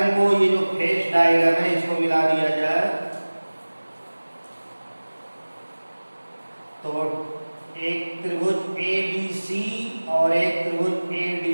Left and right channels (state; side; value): inverted; both; correlation -1.00